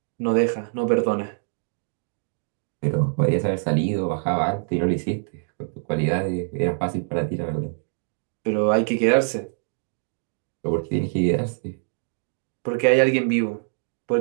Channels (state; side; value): silent; left; digital silence